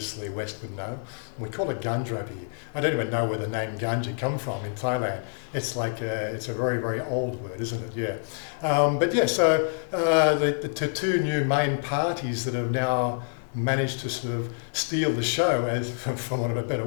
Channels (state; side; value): silent; right; digital silence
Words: the West would know. We call it ganja over here. I don't even know where the name ganja come from in Thailand. It's like, it's a very, very old word, isn't it? Yeah. But yeah, so the 2 new main parties that have now managed to sort of steal the show, as for want of a better